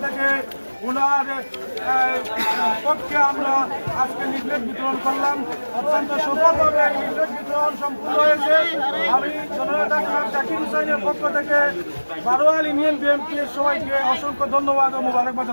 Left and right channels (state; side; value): inverted; both; correlation -1.00